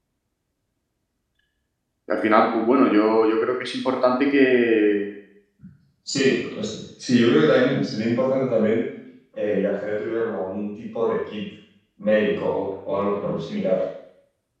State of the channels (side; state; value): both; identical; correlation 1.00